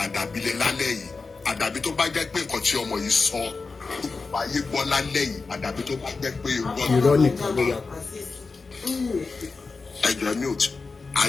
lé lálẹ́ yìí àdàbí tó bá jẹ́ pé nǹkan tí ọmọ yìí sọ ayé gbọ́ lálẹ́ yìí àdàbí tó bá jẹ́ pé irọ́ nìkan ló wà. ẹjọ́ mute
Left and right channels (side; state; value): right; quieter; 4.2 dB